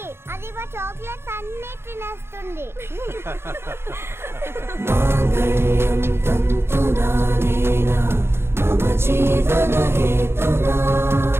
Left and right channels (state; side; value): late; left; 0.12 ms